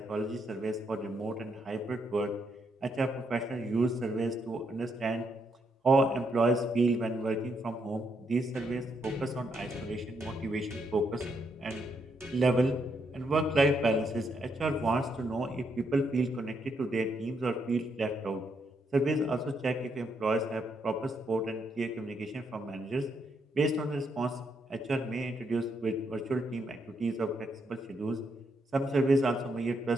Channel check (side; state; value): both; normal; correlation 0.77